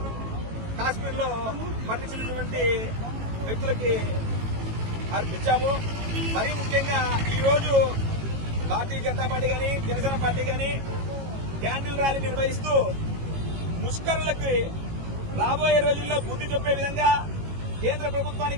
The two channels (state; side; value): late; left; 18 ms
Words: కాశ్మీర్ లో మరణించినటువంటి వ్యక్తులకి అర్పించాము. మరీ ముఖ్యంగా ఈరోజు భారతీయ జనతా పార్టీ గాని జనసేన పార్టీ గాని క్యాండిల్ ర్యాలీ నిర్వహిస్తూ ముష్కరులకి రాబోయే రోజుల్లో బుద్ధి చెప్పే విధంగా కేంద్ర